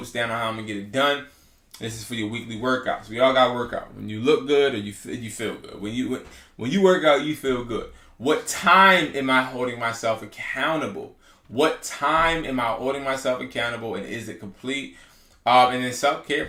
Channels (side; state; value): both; identical; correlation 1.00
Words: down on how I'm going to get it done. This is for your weekly workouts. We all got to work out. When you look good or you feel good. When you work out, you feel good. What time am I holding myself accountable? What time am I holding myself accountable, and is it complete? And then self-care